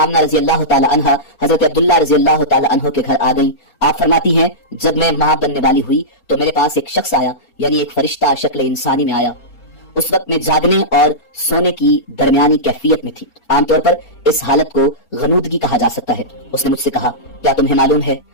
رضی اللہ تعالی عنہا حضرت عبداللہ رضی اللہ تعالی عنہ کے گھر آ گئیں۔ آپ فرماتی ہیں جب میں ماں بننے والی ہوئی تو میرے پاس ایک شخص آیا، یعنی ایک فرشتہ شکل انسانی میں آیا۔ اس وقت میں جاگنے اور سونے کی درمیانی کیفیت میں تھی۔ عام طور پر اس حالت کو غنودگی کہا جا سکتا ہے۔ اس نے مجھ سے کہا کیا تمہیں معلوم ہے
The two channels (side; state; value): right; late; 4.3 ms